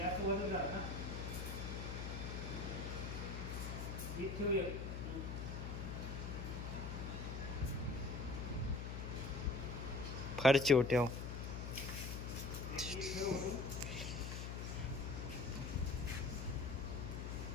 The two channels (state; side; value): noise; left; hum, 4 dB below the sound